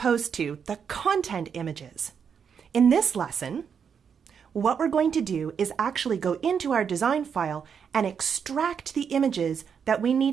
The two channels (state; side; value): quieter; left; 7.0 dB